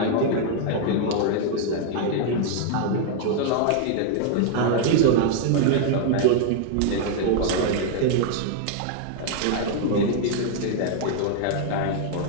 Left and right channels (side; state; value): both; different; correlation 0.00